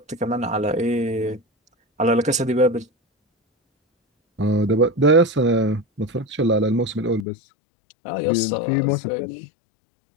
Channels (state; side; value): drops out; right; at 7.2 s